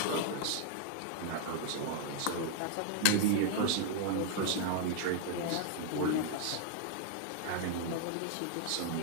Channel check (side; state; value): both; different; correlation -0.01